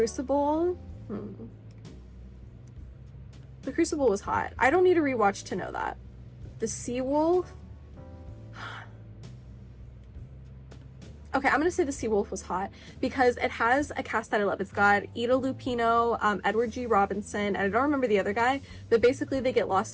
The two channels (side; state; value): both; identical; correlation 1.00